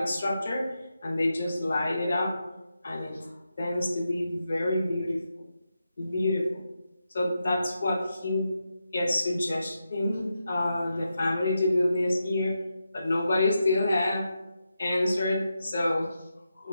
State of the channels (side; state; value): both; inverted; correlation -0.87